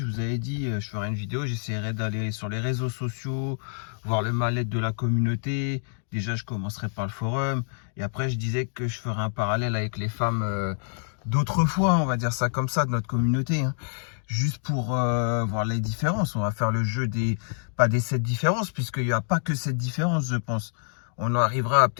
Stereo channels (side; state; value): right; silent; digital silence